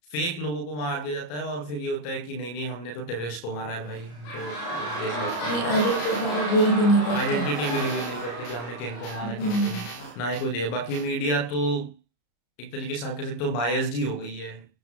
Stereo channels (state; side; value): late; right; 34 ms